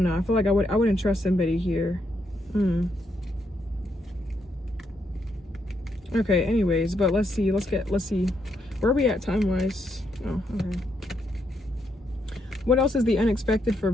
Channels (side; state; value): both; normal; correlation 0.78